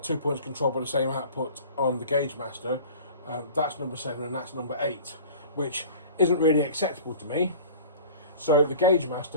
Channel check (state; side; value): inverted; both; correlation -0.42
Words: points controlled by the same output on the Gaugemaster, that's number 7 and that's number 8, which isn't really acceptable to me. So the